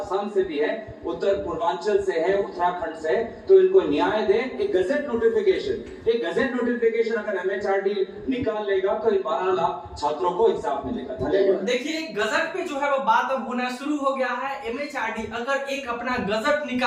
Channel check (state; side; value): identical; both; correlation 1.00